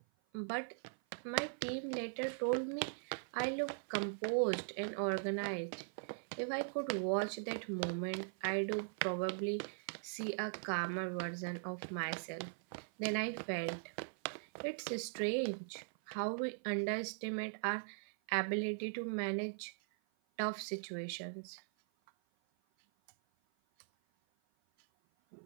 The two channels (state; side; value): silent; left; 51 dB below the other